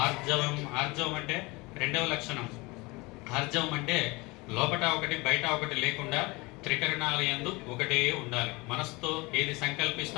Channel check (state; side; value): quieter; right; 24.5 dB